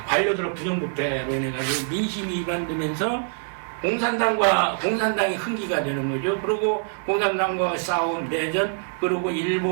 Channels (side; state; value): left; silent; 61 dB below the other